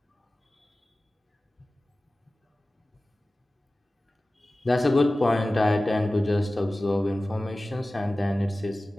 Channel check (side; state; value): both; normal; correlation 0.97